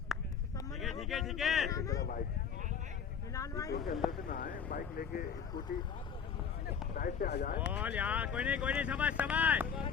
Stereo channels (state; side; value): quieter; right; 7.0 dB